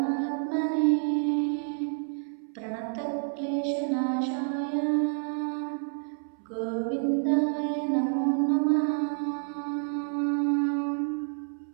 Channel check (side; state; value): left; silent; 59 dB below the other